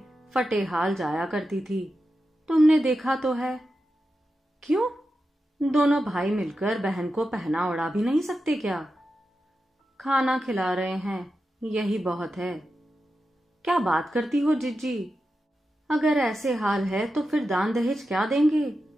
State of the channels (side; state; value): both; normal; correlation 0.90